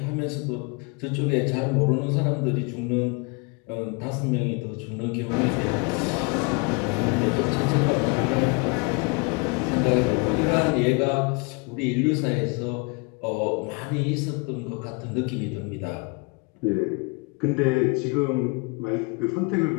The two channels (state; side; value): quieter; right; 31.0 dB